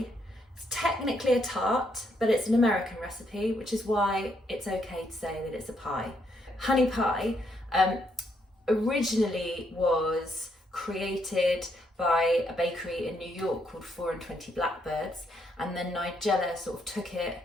It's technically a tart, but it's an American recipe, which is why it's okay to say that it's a pie. Honey pie originally was created by a bakery in New York called 4 and 20 Blackbirds, and then Nigella sort of took it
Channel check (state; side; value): normal; both; correlation 0.75